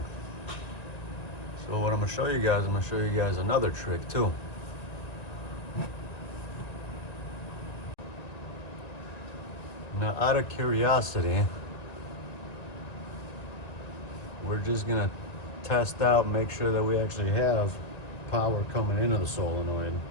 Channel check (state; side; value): late; right; 1.9 ms